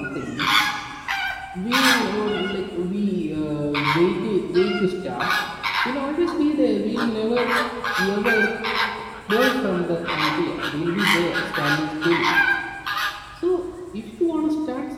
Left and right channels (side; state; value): both; identical; correlation 1.00